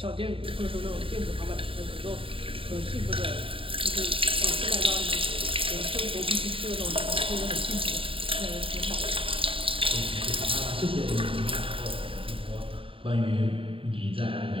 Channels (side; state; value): left; late; 0.26 ms